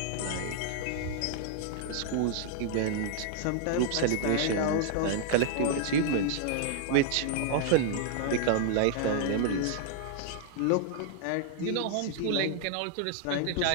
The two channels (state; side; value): different; both; correlation 0.00